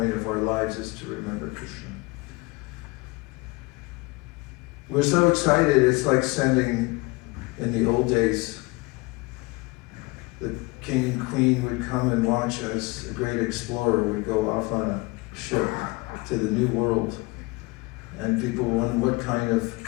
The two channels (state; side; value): quieter; right; 24.6 dB